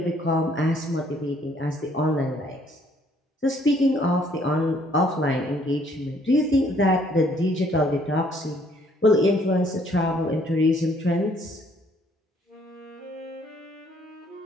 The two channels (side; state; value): both; normal; correlation 0.64